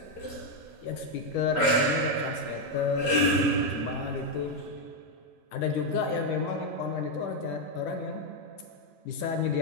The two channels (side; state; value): both; normal; correlation 0.02